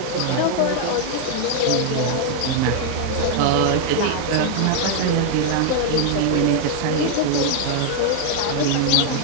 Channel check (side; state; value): both; different; correlation 0.00